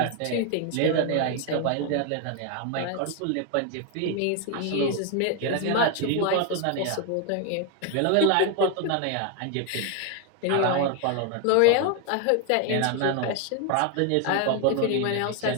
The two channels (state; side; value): different; both; correlation 0.01